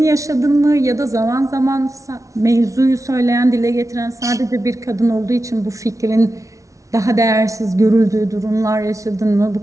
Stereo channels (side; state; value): left; late; 0.16 ms